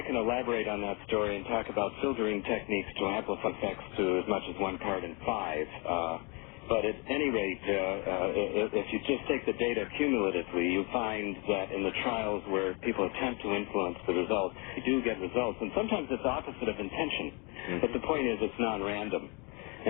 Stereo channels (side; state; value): right; quieter; 31.2 dB